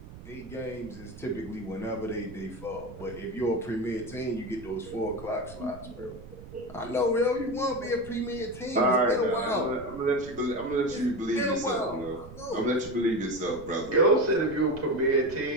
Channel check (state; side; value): noise; right; rumble, 15 dB below the sound